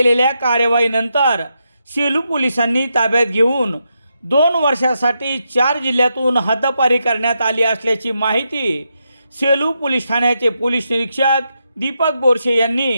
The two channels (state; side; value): inverted; both; correlation -0.83